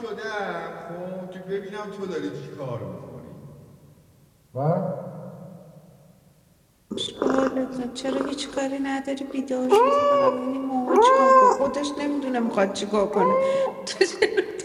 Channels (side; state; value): both; identical; correlation 1.00